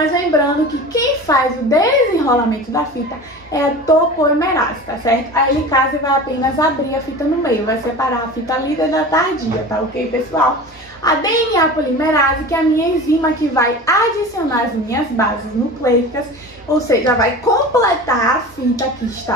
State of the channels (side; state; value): both; normal; correlation 0.34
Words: lembrando que quem faz o desenrolamento da fita é a topoimerase, tá certo? A helicase vai apenas abrir a fita no meio, vai separar a fita líder da tardia, tá ok, pessoal? A DNA polimerase, que é a minha enzima que vai adicionar as minhas bases nucleicas, ou seja, vai completar a fita que